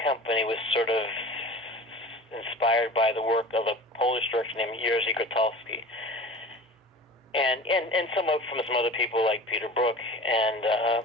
company was sort of inspired by the work of a Polish director named Jerzy Grotowski. And some from some other people like Peter Brook and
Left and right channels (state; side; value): normal; both; correlation 0.38